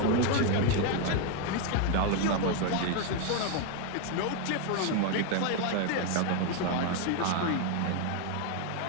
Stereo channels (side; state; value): both; different; correlation 0.01